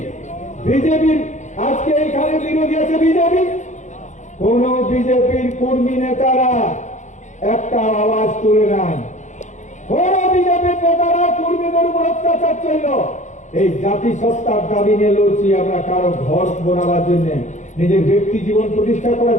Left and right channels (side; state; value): right; late; 0.35 ms